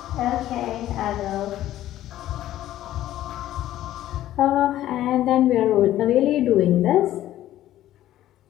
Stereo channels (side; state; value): right; quieter; 13.4 dB